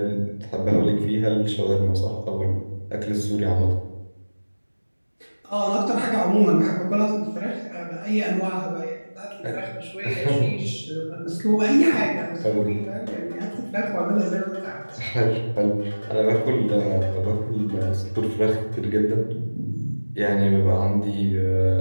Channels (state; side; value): inverted; both; correlation -1.00